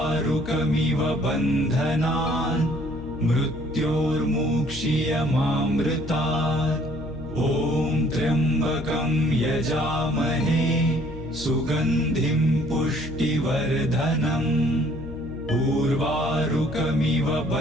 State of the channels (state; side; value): noise; left; hum, 12 dB below the sound